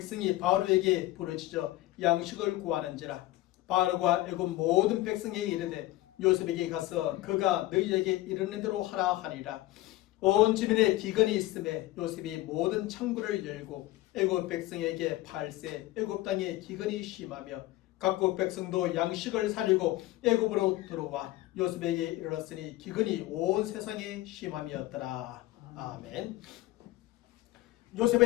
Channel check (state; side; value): quieter; right; 17.1 dB